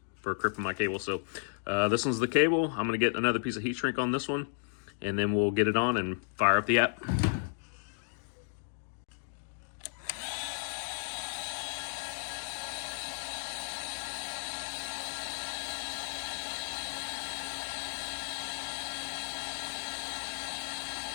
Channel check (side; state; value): right; silent; digital silence